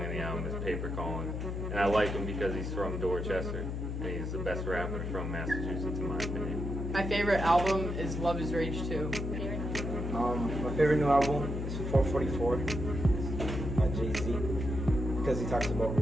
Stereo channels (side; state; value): left; noise; hum, 3 dB below the sound